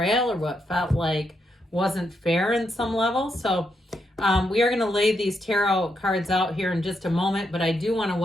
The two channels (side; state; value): both; normal; correlation 0.81